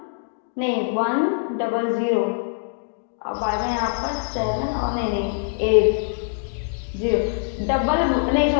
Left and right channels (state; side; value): silent; right; digital silence